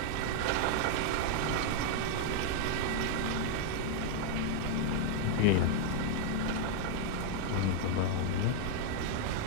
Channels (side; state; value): both; different; correlation 0.00